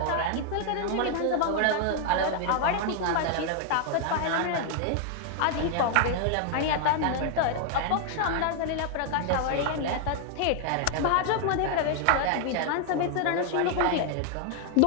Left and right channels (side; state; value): both; different; correlation 0.00